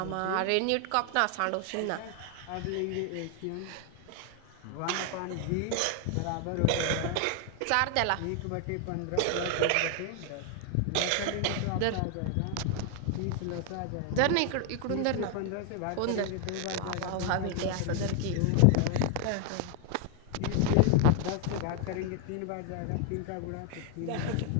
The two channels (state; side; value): different; both; correlation 0.00